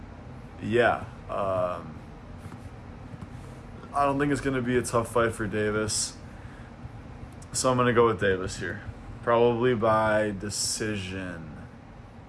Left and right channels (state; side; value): identical; both; correlation 1.00